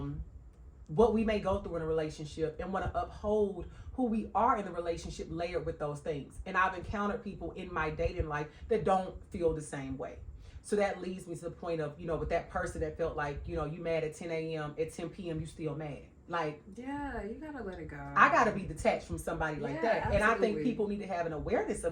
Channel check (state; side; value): identical; both; correlation 1.00